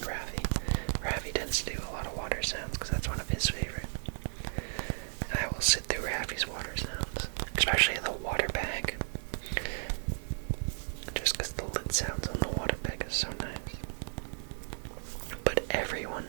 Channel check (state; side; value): silent; left; 55 dB below the other